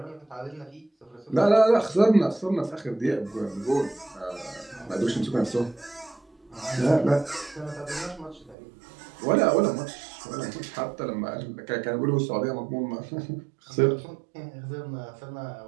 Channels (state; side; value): drops out; left; at 8.6 s